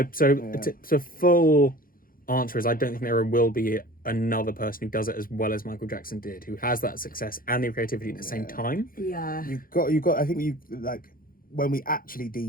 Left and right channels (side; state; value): right; late; 0.42 ms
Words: So full answer is I don't think there will be another person who does it as well as Michael Jackson did, who has that success and the creativity at the same time. You've got I think you like, when we actually